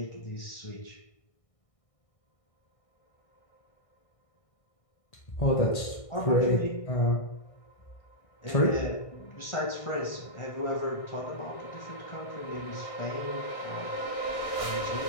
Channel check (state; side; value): late; right; 1.6 ms